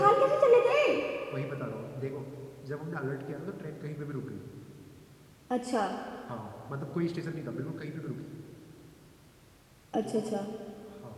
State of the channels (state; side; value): identical; both; correlation 1.00